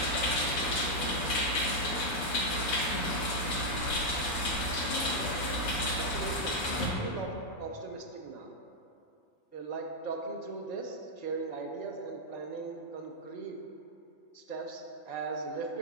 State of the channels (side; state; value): right; late; 6.3 ms